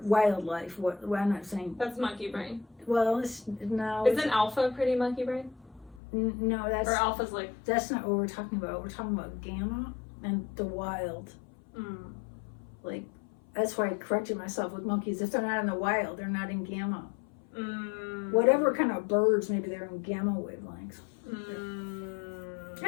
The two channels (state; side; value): drops out; right; at 6.0 s